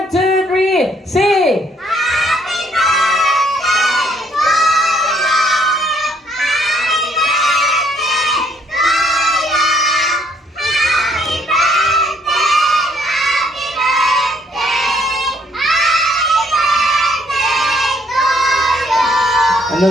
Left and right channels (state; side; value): normal; both; correlation 0.67